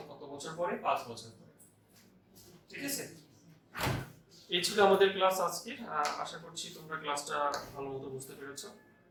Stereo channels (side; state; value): both; identical; correlation 1.00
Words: কত বছর পরে? 5 বছর পরে। ঠিক আছে, এই ছিল আমাদের ক্লাস আজকে। আশা করছি তোমরা ক্লাসটা ভালো মতো বুঝতে পেরেছো।